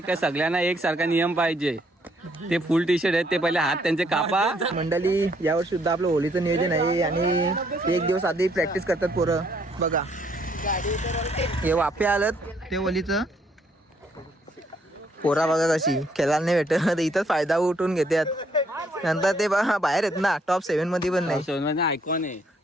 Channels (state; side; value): normal; both; correlation 0.68